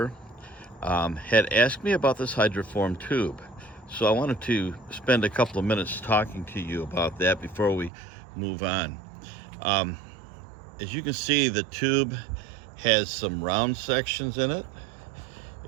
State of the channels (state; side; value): drops out; left; at 7.9 s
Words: had asked me about this hydroform tube. So I wanted to spend a couple of minutes talking to you about that before we move on. As you can see, the tube has some round sections in it.